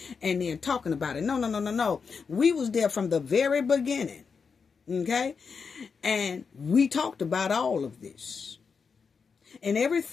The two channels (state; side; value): quieter; right; 5.6 dB